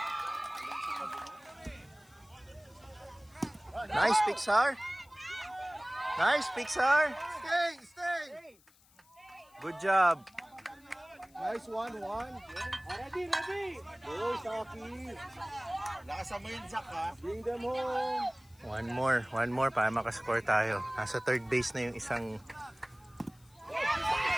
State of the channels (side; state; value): left; noise; hiss, 29 dB below the sound